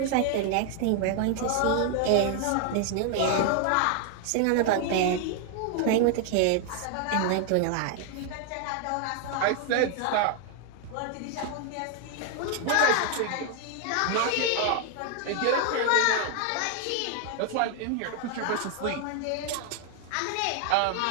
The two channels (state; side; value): different; both; correlation 0.00